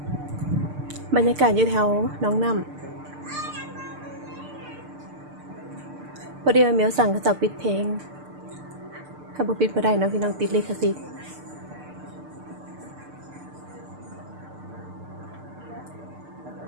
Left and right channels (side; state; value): left; late; 6.7 ms